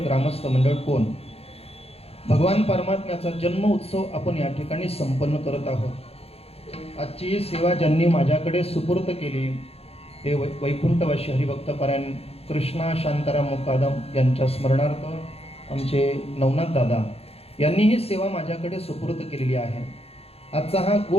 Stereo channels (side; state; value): right; late; 0.29 ms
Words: ग्रामस्थ मंडळ कोण भगवान परमात्म्याचा जन्म उत्सव आपण या ठिकाणी संपन्न करत आहोत। आजची सेवा ज्यांनी माझ्याकडे सुपूर्त केली ते वैकुंठवासी हरिभक्तपरायण कृष्णा शांताराम मुकादम यांच्या स्मरणार्थ आमचे नवनाथ दादा यांनी ही सेवा माझ्याकडे सुपूर्त केलेली आहे। आजचा हा